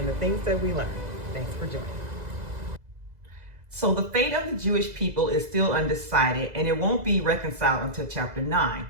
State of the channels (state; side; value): late; left; 2.0 ms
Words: the things that we learned. Thanks for joining. So the fate of the Jewish people is still undecided, and it won't be reconciled until chapter 9.